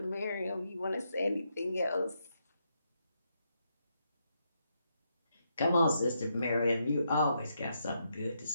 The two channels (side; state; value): both; inverted; correlation -0.80